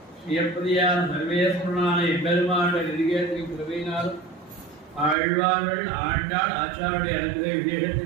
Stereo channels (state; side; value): drops out; left; at 5.2 s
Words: ஸ்ரீயப்பதியான சர்வேஸ்வரனான எம்பெருமானுடைய நெருங்கியத்தின் கிருபையினாலும் ஆழ்வார்கள் ஆண்டாள் ஆச்சாருடைய அனுகிரக